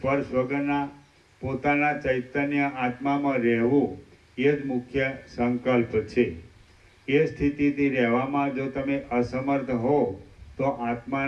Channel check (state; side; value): identical; both; correlation 1.00